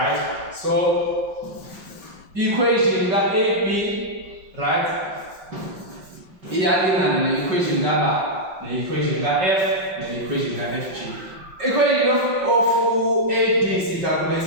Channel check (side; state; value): left; late; 5.4 ms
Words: So equation that AB, right? The equation that the equation that f, the equation that FG. Equation of AD is